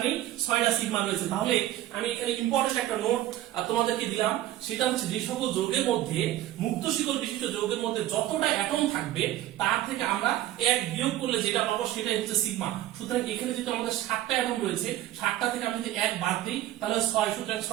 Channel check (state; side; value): quieter; left; 14.1 dB